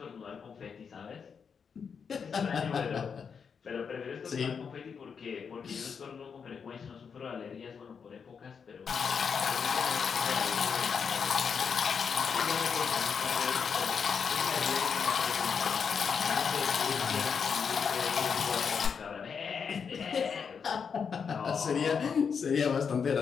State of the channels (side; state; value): right; quieter; 6.3 dB